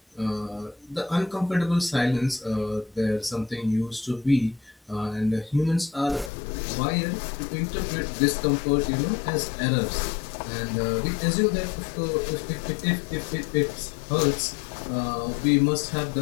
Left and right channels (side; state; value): right; drops out; at 6.3 s